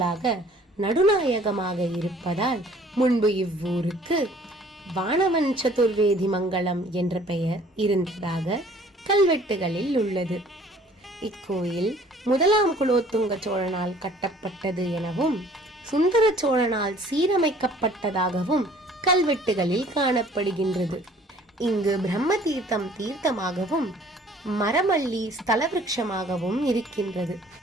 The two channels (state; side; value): normal; both; correlation 0.55